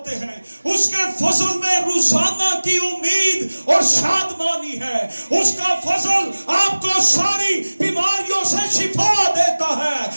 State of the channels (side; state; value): both; inverted; correlation -1.00